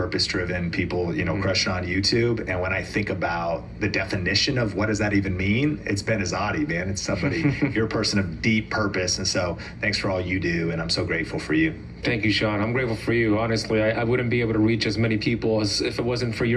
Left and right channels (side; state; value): both; identical; correlation 1.00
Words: people, crush it on YouTube. And when I think about the definition of what does that even mean, it's Ben Azadi, man. It's somebody, you're a person of deep purpose. And so thanks for all you do. And I'm so grateful for you. Thank you, Sean. I'm grateful for you. Honestly, I wouldn't be able to reach as many people as if it wasn't for